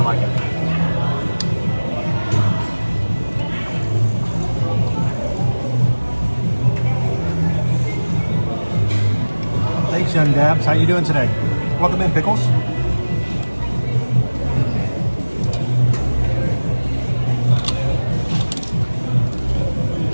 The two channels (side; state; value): both; inverted; correlation -1.00